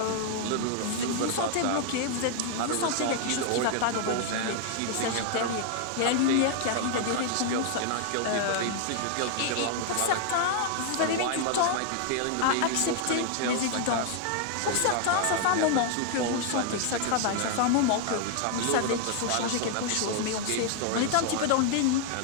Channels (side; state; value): both; different; correlation 0.00